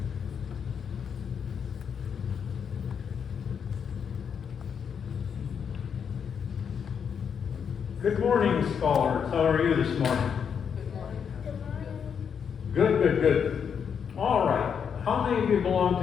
Good morning, scholars. How are you this morning? Good. All right. How many of you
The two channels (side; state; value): right; quieter; 7.2 dB